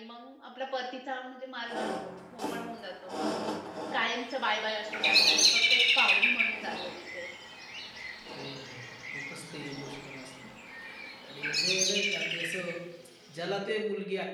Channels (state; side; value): identical; both; correlation 1.00